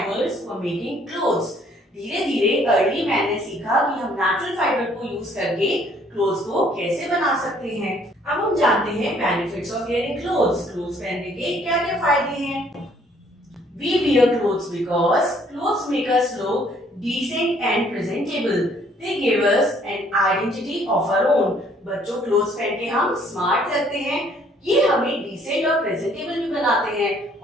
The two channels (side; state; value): both; normal; correlation 0.62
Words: for making clothes. धीरे धीरे अर्ली मैन ने सीखा कि हम नेचुरल फाइबर को यूज करके क्लोथ्स को कैसे बना सकते हैं। अब हम जानते हैं benefits of wearing clothes. Clothes पहनने के क्या क्या फायदे हैं। We wear clothes because clothes make us look decent and presentable. They give us an identity of our own. बच्चों, क्लोथ्स पहन के हम स्मार्ट लगते हैं, ये हमें डिसेंट और प्रेजेंटेबल भी बनाते हैं